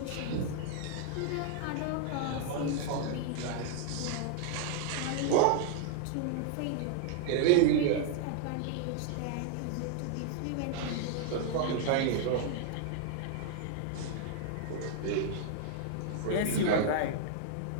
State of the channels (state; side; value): different; both; correlation 0.00